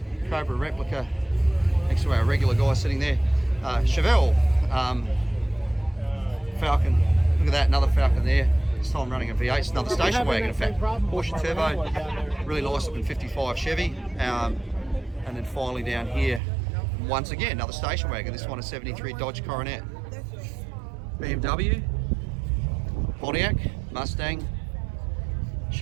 Cobra replica next to our regular guy sitting there. Chevelle. Falcon, look at that, another Falcon there. This time running a V8, it's another station wagon in fact. Porsche Turbo, really nice looking 55 Chevy. And then finally down here, once again, another station wagon. This one a 73 Dodge Coronet. BMW, Pontiac, Mustang,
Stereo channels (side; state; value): left; drops out; at 16.4 s